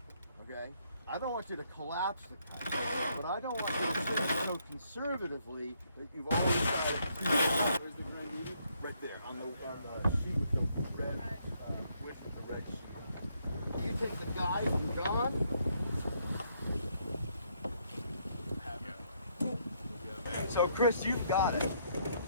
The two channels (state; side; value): inverted; both; correlation -0.72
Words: Okay? I don't want you to collapse the kite, but I don't want you to sit so conservatively that you've always got it. Where's the red needle? Right there, on the sheet with the red, with the red sheet. You take the guide and gone. So Chris, you've got it.